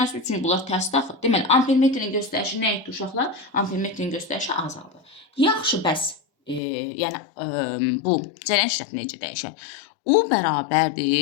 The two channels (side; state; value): right; drops out; at 6.6 s